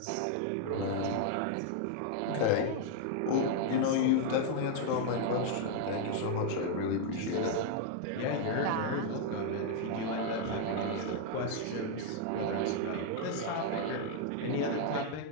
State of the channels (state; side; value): different; both; correlation 0.00